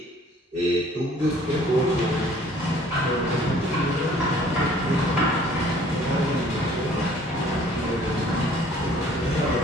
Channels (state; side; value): normal; both; correlation 0.55